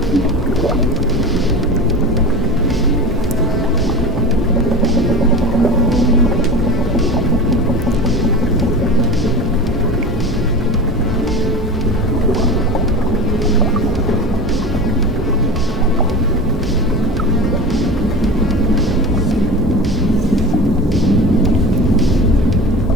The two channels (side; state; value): both; normal; correlation 0.31